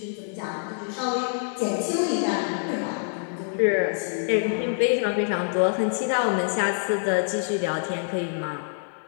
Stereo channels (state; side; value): silent; right; digital silence